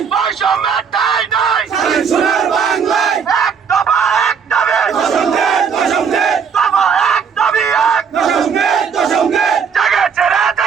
নাই, এক দফা এক দাবি, দফা এক দাবি এক, জেগেছে রে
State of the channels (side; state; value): left; quieter; 6.6 dB